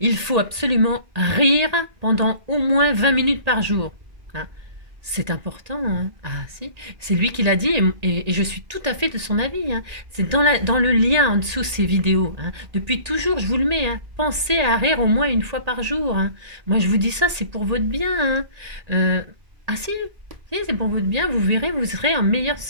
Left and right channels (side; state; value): left; late; 1.8 ms